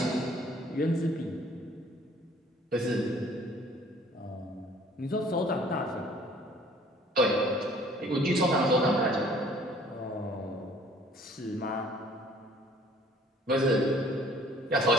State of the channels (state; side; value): normal; both; correlation 0.55